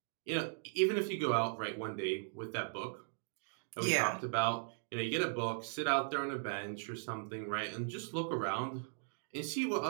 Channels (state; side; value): silent; left; digital silence